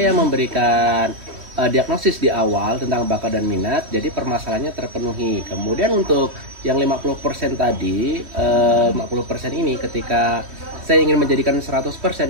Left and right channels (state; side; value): late; left; 3.1 ms